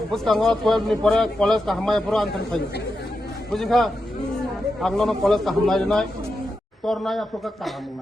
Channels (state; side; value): normal; both; correlation 0.87